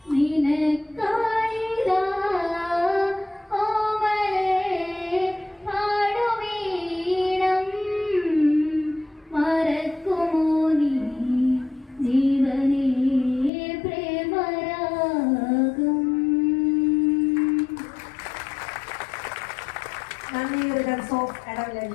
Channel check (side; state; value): right; drops out; at 13.5 s